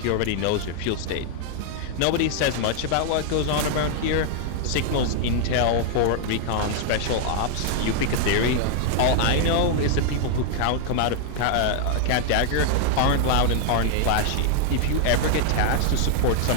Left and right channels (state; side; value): different; both; correlation 0.00